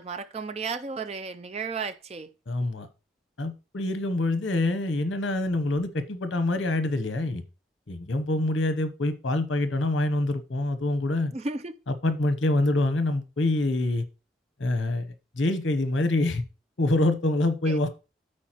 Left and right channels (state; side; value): normal; both; correlation 0.71